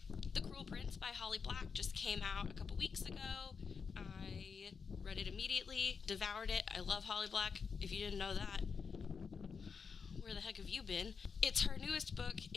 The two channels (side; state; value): right; quieter; 5.7 dB